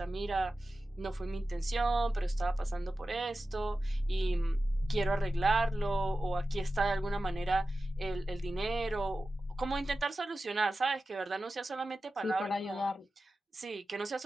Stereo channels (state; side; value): normal; both; correlation 0.93